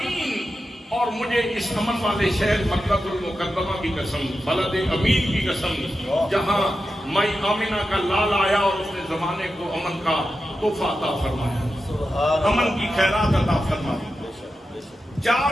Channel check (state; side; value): normal; both; correlation 0.90